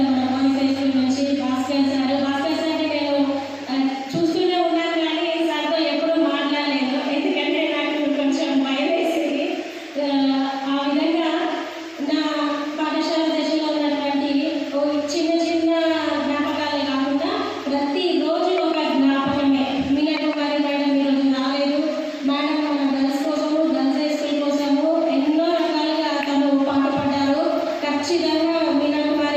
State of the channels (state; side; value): identical; both; correlation 1.00